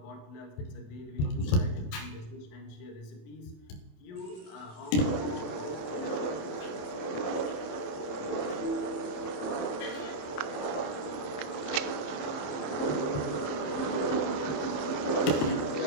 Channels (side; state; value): right; late; 27 ms